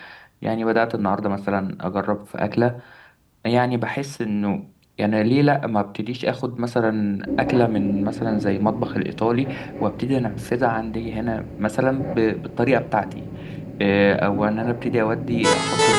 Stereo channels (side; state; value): both; identical; correlation 1.00